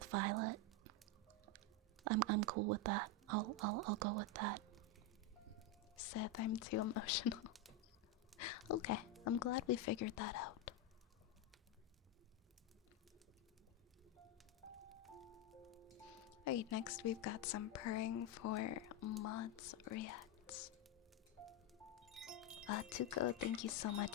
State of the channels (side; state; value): both; normal; correlation 0.06